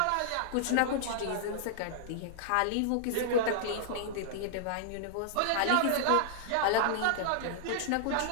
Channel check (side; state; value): both; different; correlation -0.01